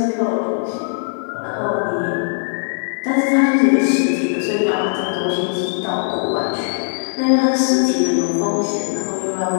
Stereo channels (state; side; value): silent; right; 61 dB below the other